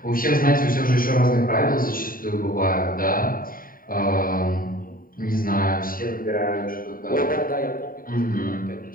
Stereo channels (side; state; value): right; late; 0.41 ms